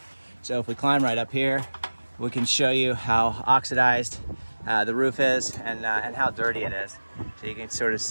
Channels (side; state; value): both; inverted; correlation -1.00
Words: So if we climb right up here, we can show you how oxidized the roof is and how dirty it is. So you can sort of